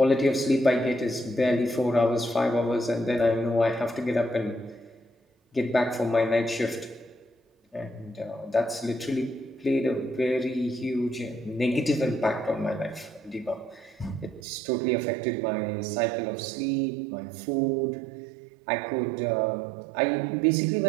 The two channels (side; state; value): left; drops out; at 14.4 s